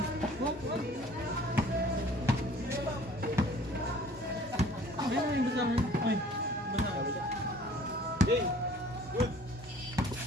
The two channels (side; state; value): both; normal; correlation 0.51